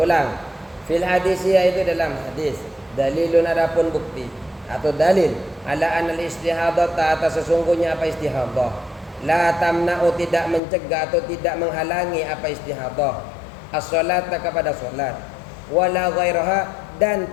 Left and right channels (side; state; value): right; drops out; at 10.6 s